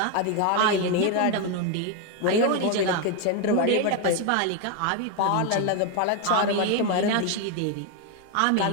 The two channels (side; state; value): both; different; correlation 0.01